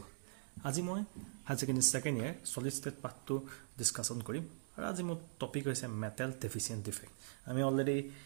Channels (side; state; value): left; silent; digital silence